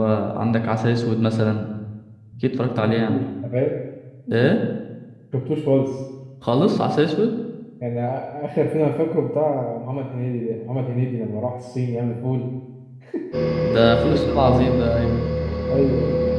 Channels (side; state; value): both; identical; correlation 1.00